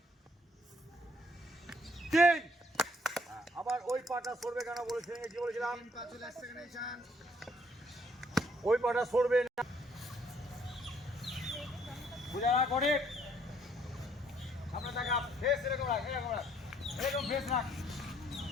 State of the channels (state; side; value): normal; both; correlation 0.65